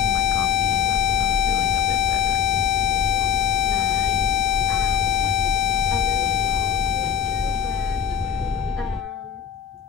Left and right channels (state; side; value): quieter; right; 8.6 dB